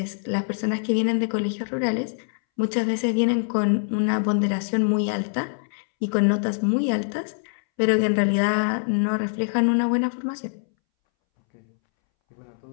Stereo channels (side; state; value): right; silent; 63 dB below the other